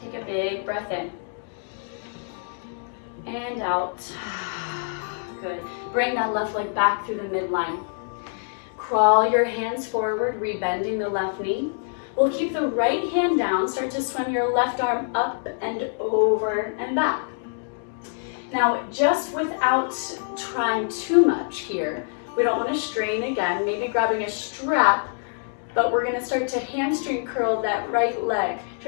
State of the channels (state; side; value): silent; right; digital silence